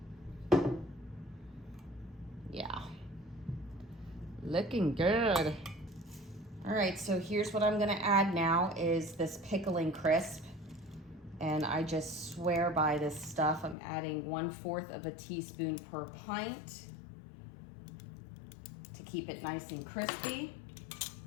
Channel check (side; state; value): right; drops out; at 13.8 s